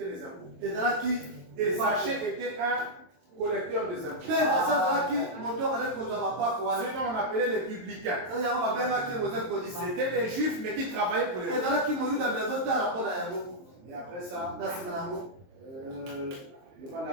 les impôts. Et Zachée était un collecteur des impôts. Ce dont on appelait les publicains. C'était des juifs, mais qui travaillaient pour les juifs. Et après ça, il y aura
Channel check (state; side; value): late; left; 23 ms